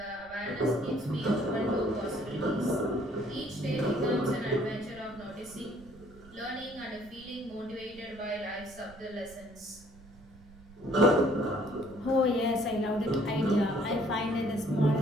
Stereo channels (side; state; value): right; noise; rumble, 22 dB below the sound